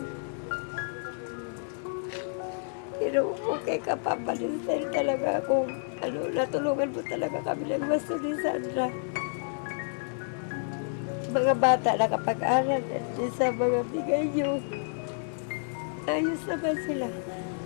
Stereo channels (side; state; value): right; silent; digital silence